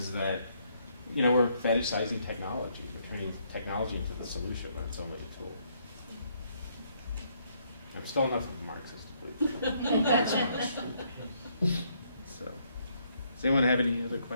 that, you know, we're fetishizing technology. We're turning technology into the solution, but it's only a tool. I'm still enough of a Marxist, please. So, does anyone have any other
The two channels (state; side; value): inverted; both; correlation -0.71